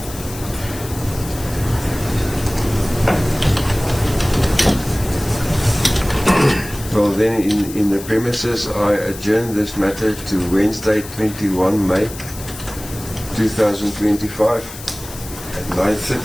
Well then, in the premises, I adjourn this matter to Wednesday 21 May 2025 at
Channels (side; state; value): left; noise; hiss, 14 dB below the sound